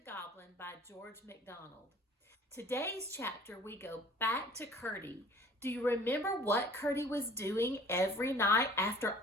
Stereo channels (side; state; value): both; normal; correlation 0.50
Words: Goblin by George MacDonald. Today's chapter, we go back to Currie. Do you remember what Currie was doing every night after